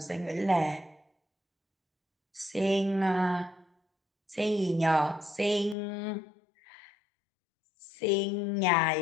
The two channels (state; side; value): drops out; right; at 5.8 s